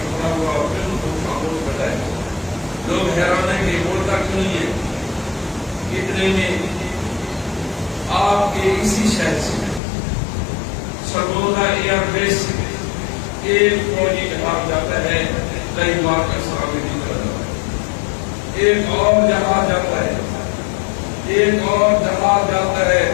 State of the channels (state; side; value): drops out; right; at 9.8 s